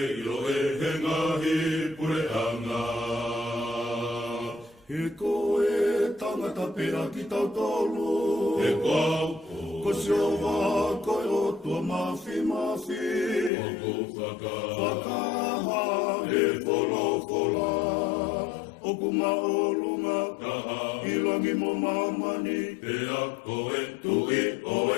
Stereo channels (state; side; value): drops out; right; at 13.5 s